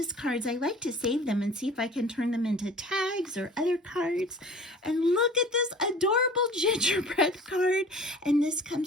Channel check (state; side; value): normal; both; correlation 0.45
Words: cards, I like to save them and see if I can turn them into tags or other cards. And look at this adorable gingerbread card. And this